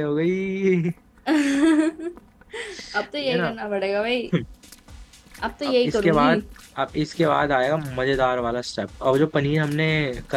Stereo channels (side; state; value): both; identical; correlation 1.00